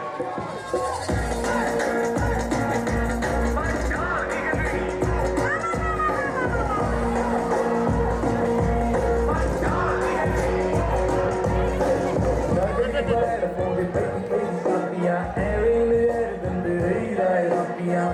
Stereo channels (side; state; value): both; identical; correlation 1.00